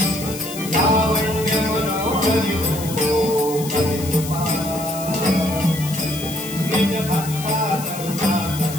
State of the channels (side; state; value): left; noise; hiss, 10 dB below the sound